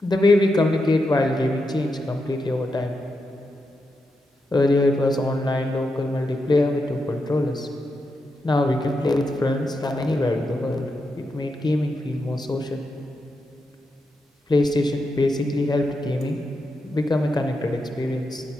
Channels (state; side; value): normal; both; correlation 0.86